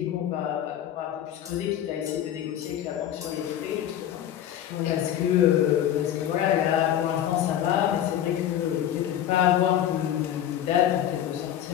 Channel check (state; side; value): quieter; right; 11.0 dB